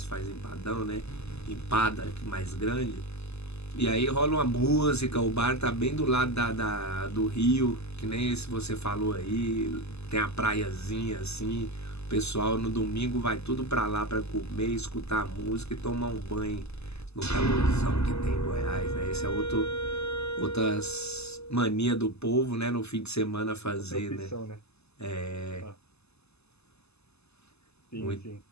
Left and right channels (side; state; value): right; late; 0.79 ms